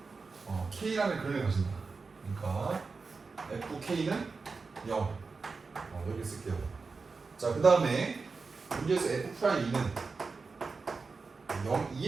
K라는 근을 가진다. 그러니까 FK는 0 이렇게 쓸게요. 자, 그 다음에 문제에서 F'E는 0,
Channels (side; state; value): left; quieter; 4.4 dB